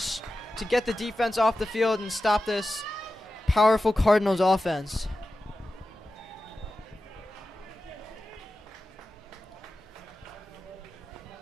to get the defense off the field and stop this powerful Cardinals offense.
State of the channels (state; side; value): normal; both; correlation 0.93